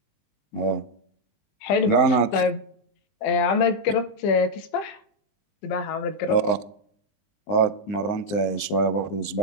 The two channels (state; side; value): late; right; 20 ms